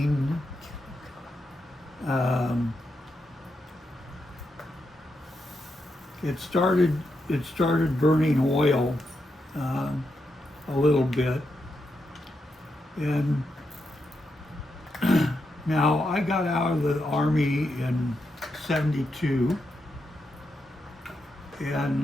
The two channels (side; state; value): both; normal; correlation 0.84